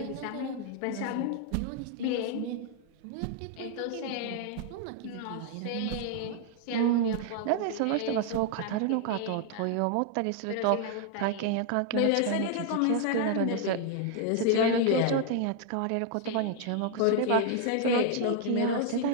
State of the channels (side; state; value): both; different; correlation 0.00